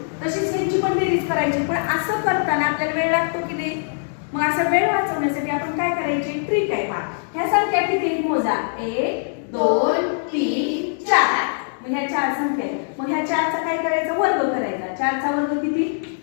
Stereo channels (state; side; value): silent; right; 64 dB below the other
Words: तशीच यांची पण बेरीज करायची. पण असं करताना आपल्याला वेळ लागतो की नाही? मग असा वेळ वाचवण्यासाठी आपण काय करायचे? ट्रिक आहे. पहा, ह्या संख्या किती मोजा? 1 2 3 4. मग ह्या 4 संख्या आहेत. मग ह्या 4चा काय करायचं? वर्ग करायचा. 4चा वर्ग किती?